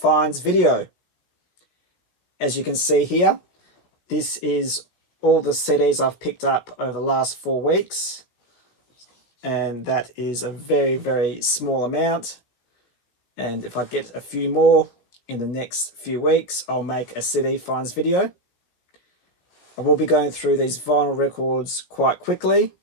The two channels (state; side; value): late; right; 17 ms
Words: video. As you can see here, this is all the CDs I've picked up over the last 4 weeks, and that is a very small amount. And if I get a few more in the next few weeks, I'll make a CD finds video. I will be going through these vinyl records quite quickly.